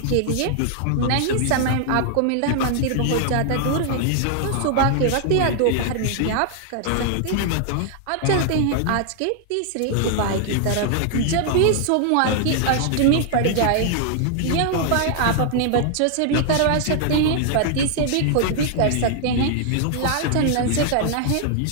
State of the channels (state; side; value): different; both; correlation 0.00